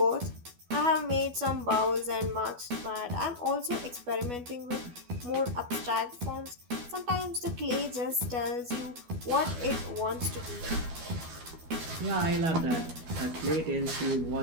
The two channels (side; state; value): left; late; 12 ms